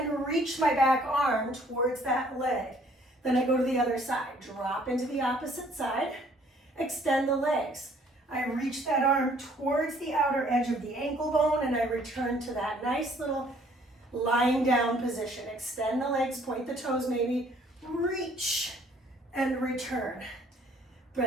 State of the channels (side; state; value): both; normal; correlation 0.60